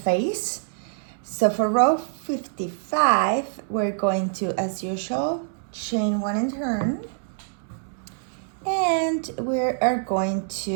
So for row 55, we're going to, as usual, chain 1 and turn. And we are going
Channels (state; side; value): silent; left; 61 dB below the other